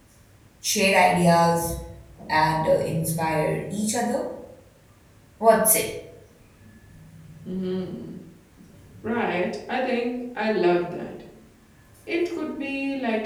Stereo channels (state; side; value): identical; both; correlation 1.00